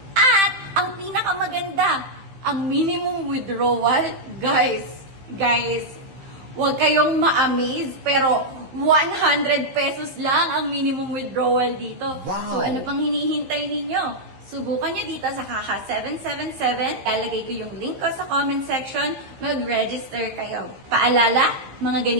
At, ang pinakamaganda, ang minimum withdrawal, guys, huwag kayong ma-amaze, pero 100 pesos lang ang minimum withdrawal dito. Wow. So, ano pang hinihintay ninyo? Subukan nyo dito sa Haha777. Lalagay ko yung link ko sa comment section. Mag-register kayo. Paalala, mga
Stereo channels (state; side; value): late; left; 15 ms